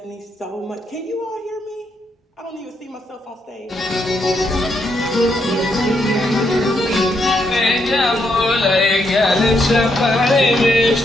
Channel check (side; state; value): both; normal; correlation 0.78